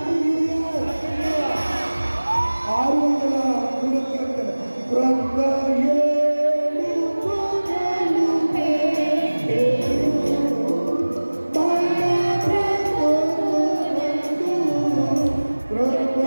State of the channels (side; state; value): both; inverted; correlation -1.00